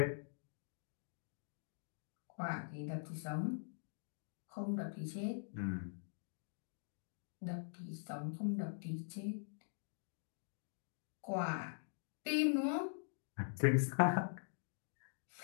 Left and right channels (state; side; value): silent; right; digital silence